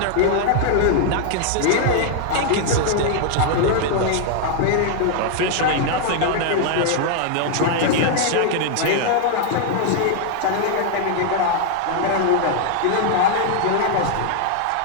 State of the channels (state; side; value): different; both; correlation 0.00